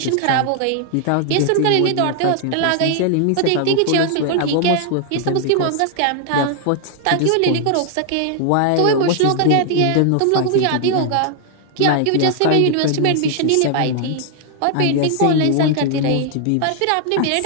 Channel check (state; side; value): different; both; correlation 0.00